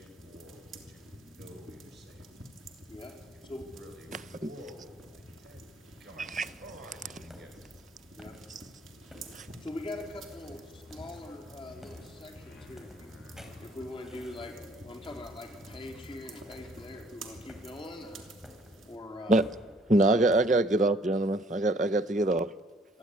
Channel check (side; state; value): both; normal; correlation 0.61